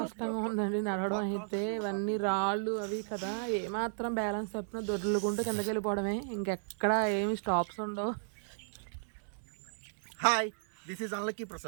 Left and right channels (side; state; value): left; silent; digital silence